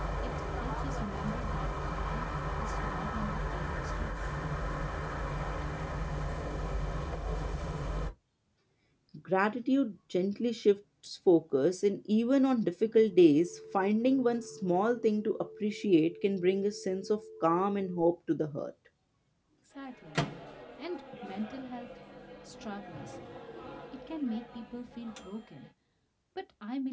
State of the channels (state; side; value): identical; both; correlation 1.00